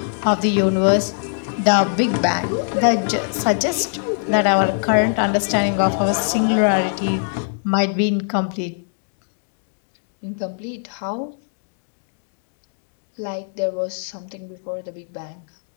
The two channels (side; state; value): right; silent; 64 dB below the other